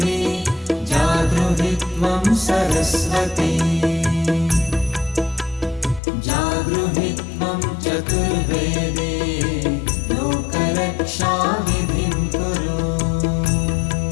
जागृहि त्वं सरस्वती जागृहि त्वं चतुर्वेदे लोकरक्षाविधिं कुरु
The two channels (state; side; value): drops out; right; at 6.0 s